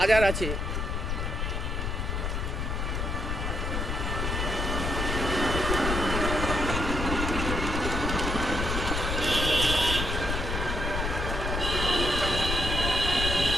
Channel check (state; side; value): noise; left; rumble, 1 dB below the sound